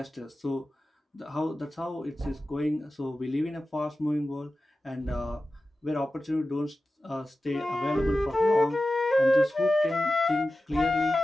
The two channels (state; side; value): normal; both; correlation 0.94